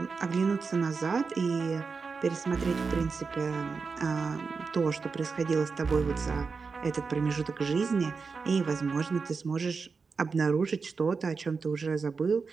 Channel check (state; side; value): quieter; left; 4.9 dB